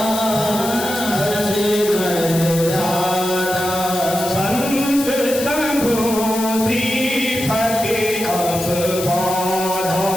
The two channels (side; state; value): left; noise; hiss, 8 dB below the sound